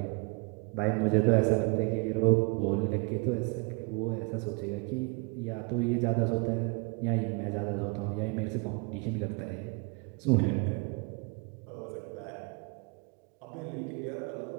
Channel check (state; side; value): quieter; left; 31.3 dB